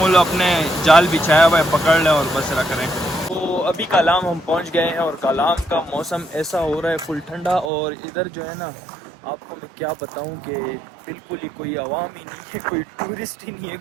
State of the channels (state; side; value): drops out; left; at 7.7 s